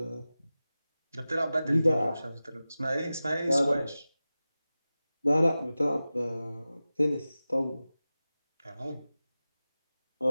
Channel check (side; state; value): both; inverted; correlation -0.96